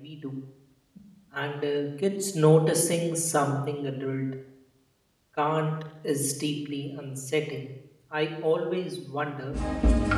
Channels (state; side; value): identical; both; correlation 1.00